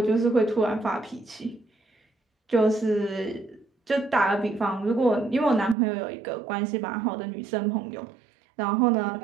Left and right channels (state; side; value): drops out; left; at 5.8 s